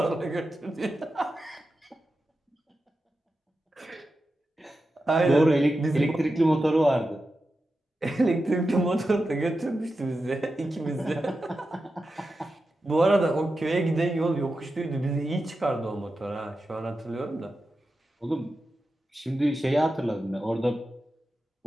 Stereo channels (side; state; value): both; normal; correlation 0.91